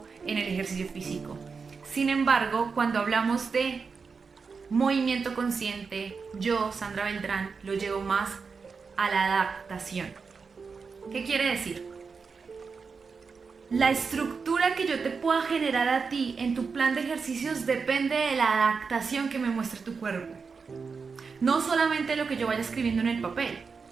en el ejercicio físico. Sin embargo, cuando hablamos de movimiento consciente, yo, Sandra Beltrán, lo llevo más a la adaptación. ¿Qué quiere decir? La estructura que yo te pueda generar a ti en tu plan de ejercicios depende de la adaptación que me muestre tu cuerpo. No solamente lo que yo vaya escribiendo en el papel,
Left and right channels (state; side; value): quieter; left; 5.1 dB